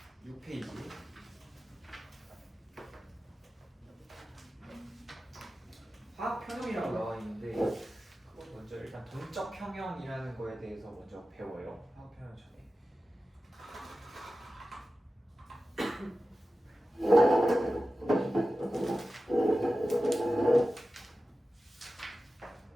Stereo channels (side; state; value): both; normal; correlation 0.94